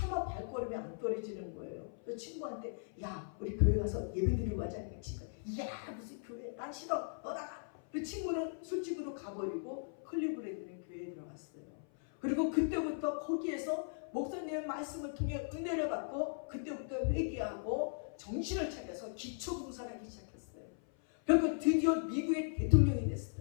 발걸음이 안 떨어지는 거예요. 그래서 친구한테 야 우리 교회 가서 예배드리고 가자니까 친구가 야 무슨 교회 난 싫어 너 나가. 그 친구는 술집으로 가버리고 클리브랜드는 교회에 들어갔어요. 그리고 그때부터 거기에서 목사님의 말씀을 통해 은혜를 받고 그때부터 회개하고 정신을 차려서 기초봉사를 하기 시작했어요. 그리고 드디어 미국의 대통령이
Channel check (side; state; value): right; silent; 52 dB below the other